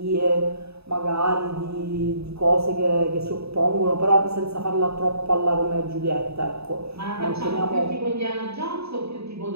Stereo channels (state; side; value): late; left; 0.79 ms